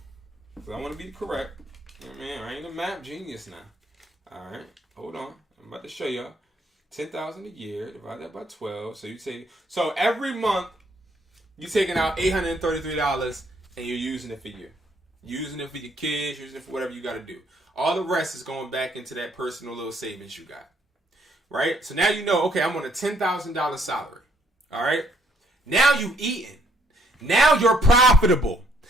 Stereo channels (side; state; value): both; normal; correlation 0.68